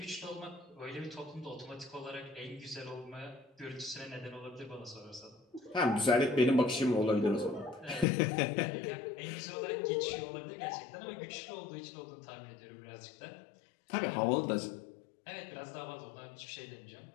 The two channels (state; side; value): drops out; right; at 8.1 s